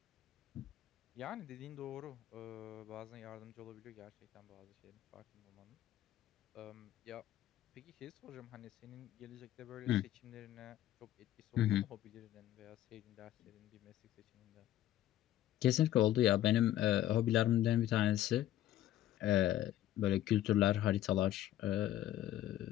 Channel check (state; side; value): quieter; right; 13.0 dB